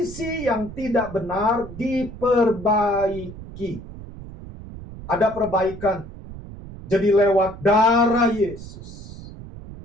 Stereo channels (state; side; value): noise; right; rumble, 14 dB below the sound